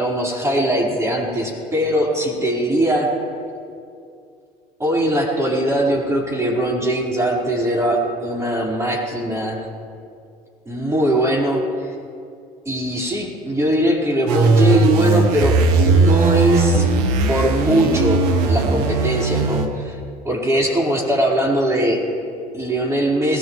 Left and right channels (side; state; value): both; normal; correlation 0.51